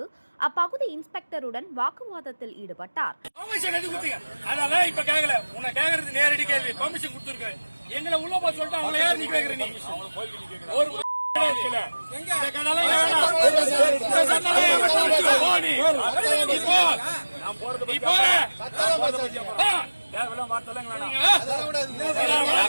அப்பகுதி இன்ஸ்பெக்டருடன் வாக்குவாதத்தில் ஈடுபட்டார்.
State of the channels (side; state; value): both; inverted; correlation -1.00